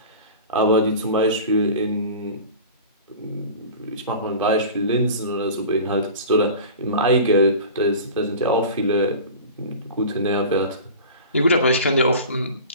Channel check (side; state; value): both; inverted; correlation -0.37